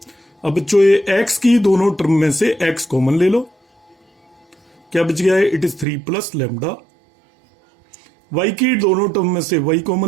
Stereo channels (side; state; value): left; drops out; at 5.9 s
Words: अब बच्चों ये एक्स की दोनों टर्म में से एक्स कॉमन ले लो, क्या बच गया है, it is 3 plus lambda. Y की दोनों टर्म में से वाई